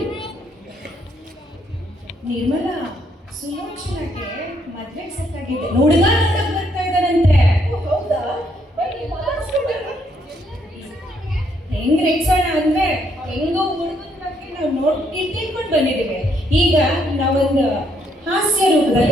ನಿರ್ಮಲಾ ಸುಲೋಚನಕ್ಕೆ ಮದ್ವೆ ಸೆಟ್ ಆಗಿದೆ. ಹುಡುಗ ನೋಡಕ್ ಬರ್ತಾ ಇದ್ದಾರಂತೆ. ಹೌದಾ? ಹೆಂಗ್ ರೇಗ್ಸೋಣ ಅಂದ್ರೆ ಹೆಂಗೋ ಹುಡುಗನ ಬಗ್ಗೆ ನಾವು ತಿಳ್ಕೊಂಡು ಬಂದಿದ್ದೀವಿ. ಈಗ ನಾವೊಂದು ಹಾಸ್ಯ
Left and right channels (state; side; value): normal; both; correlation 0.72